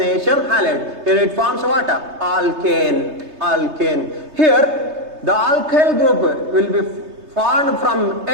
halides. Here it forms what? Alkane. Here the alkyl group will be formed from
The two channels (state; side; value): late; left; 3.3 ms